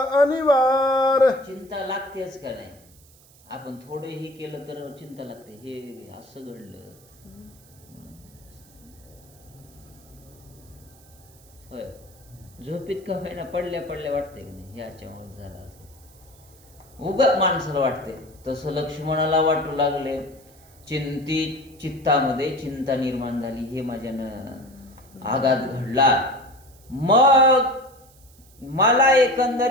अनिवार. चिंता लागतेच का नाही. आपण थोडं हे केलं तर चिंता लागते. हे असं घडलं, होय. झोपीत का होईना पडल्या पडल्या वाटते की नाही, याच्यामुळे झालं असं उगाच माणसाला वाटते. तसं लक्ष्मणाला वाटू लागले. चित्तामध्ये चिंता निर्माण झाली. हे माझ्यानं आघात घडला. मग मला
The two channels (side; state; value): right; noise; hiss, 27 dB below the sound